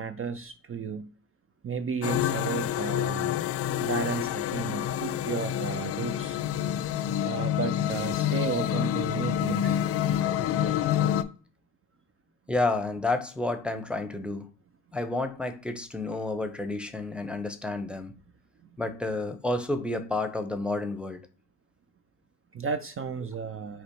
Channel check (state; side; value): quieter; right; 4.2 dB